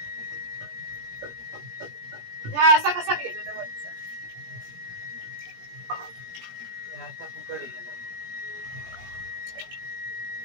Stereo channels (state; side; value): late; left; 17 ms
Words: हा असा कसा केलं तर वरचा आता फुकट आहे.